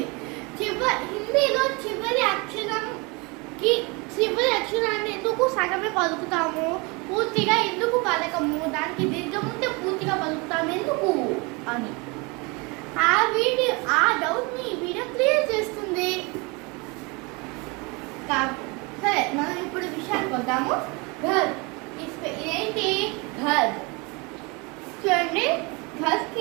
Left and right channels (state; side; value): quieter; left; 28.1 dB